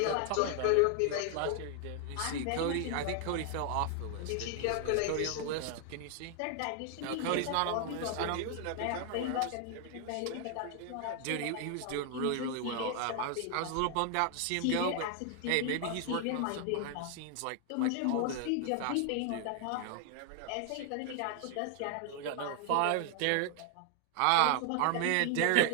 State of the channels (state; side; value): different; both; correlation 0.00